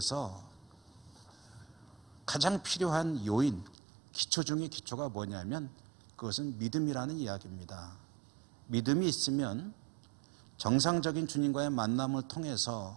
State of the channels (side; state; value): left; drops out; at 3.8 s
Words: 가장 필요한 요인, 기초 중의 기초가 뭐냐면 그것은 믿음이라는 이야기입니다. 믿음이 있으면 정상적인 주님과의 만남을